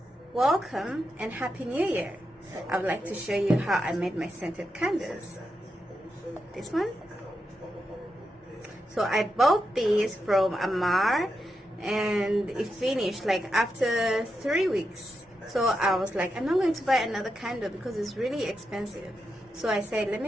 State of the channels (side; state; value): both; normal; correlation 0.86